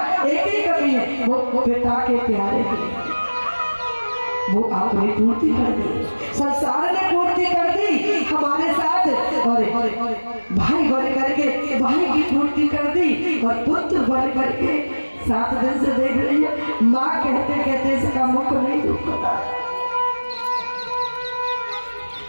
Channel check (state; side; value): inverted; both; correlation -1.00